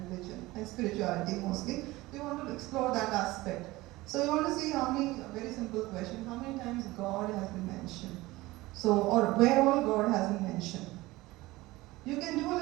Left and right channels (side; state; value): left; quieter; 19.5 dB